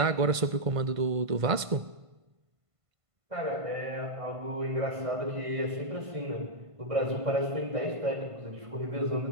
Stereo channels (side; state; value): left; late; 1.5 ms